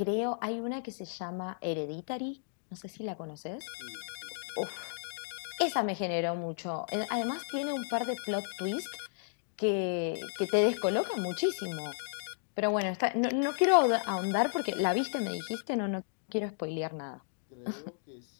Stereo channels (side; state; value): right; silent; digital silence